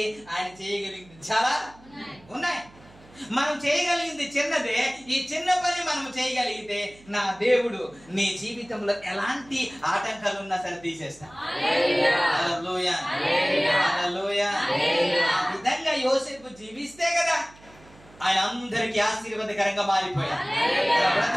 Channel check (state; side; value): noise; right; hum, 24 dB below the sound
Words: ఆయన చేయగలిగింది చాలా ఉన్నాయి. మనం చేయగలిగింది చిన్నదే. ఈ చిన్న పని మనం చేయగలిగితే నా దేవుడు నీ జీవితంలో ఎలాంటి ఆటంకాలు ఉన్నా సరే తీసేస్తా. హల్లెలూయా, హల్లెలూయా. ఆ విధంగా యోసేపు జీవిస్తే కదా ఆయన అందరికీ ఆశీర్వాదకరంగా మారిపోయాడు. తన